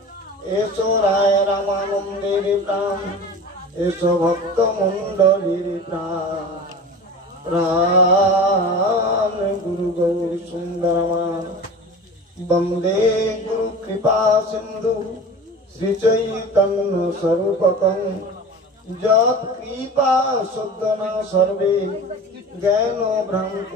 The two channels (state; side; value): normal; both; correlation 0.35